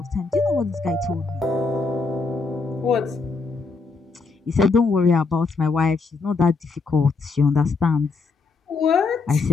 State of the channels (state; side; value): quieter; right; 4.3 dB